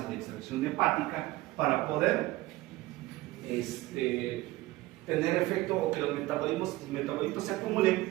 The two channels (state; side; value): quieter; left; 18.3 dB